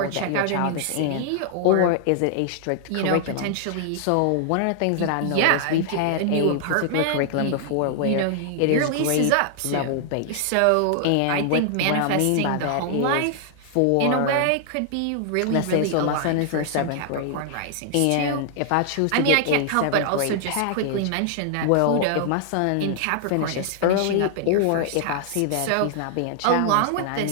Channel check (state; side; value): different; both; correlation 0.00